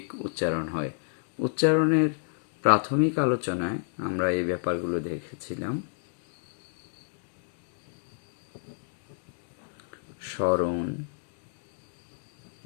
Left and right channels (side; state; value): right; silent; digital silence